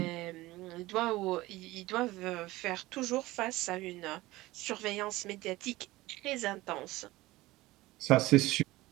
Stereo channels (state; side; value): quieter; left; 18.8 dB